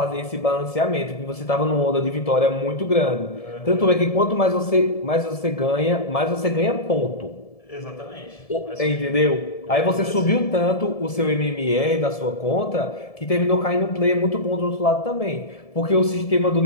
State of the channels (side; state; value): right; late; 1.7 ms